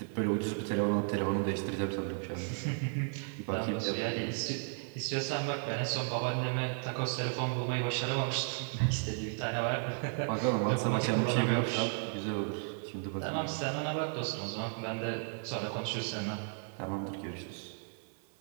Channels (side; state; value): left; silent; 55 dB below the other